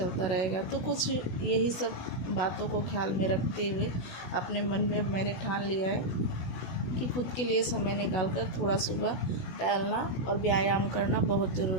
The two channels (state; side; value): late; right; 16 ms